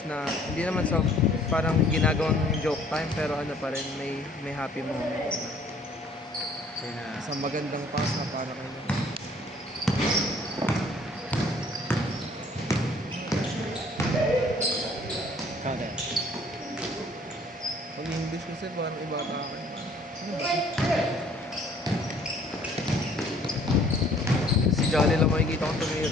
na hindi naman sa parang ginagawang joke time, pero ano pa rin, may happy moment. Sa magandang pass na para kayo. Kada. Pag English kasi parang iba ka. Ano ba? Si Jolly lang makikita kong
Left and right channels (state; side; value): normal; both; correlation 0.57